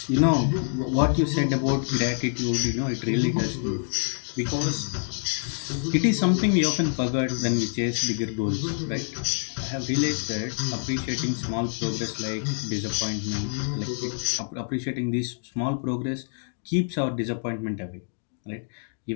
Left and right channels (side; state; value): right; silent; 61 dB below the other